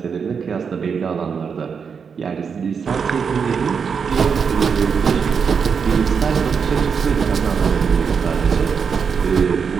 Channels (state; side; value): quieter; left; 6.2 dB